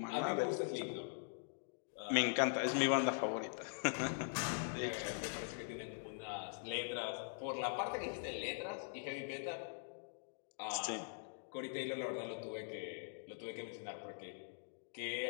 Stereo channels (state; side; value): silent; right; digital silence